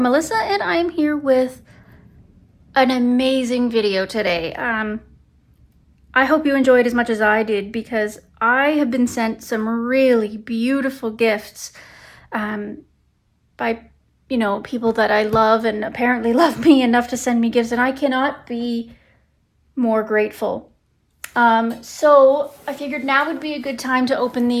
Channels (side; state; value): both; identical; correlation 1.00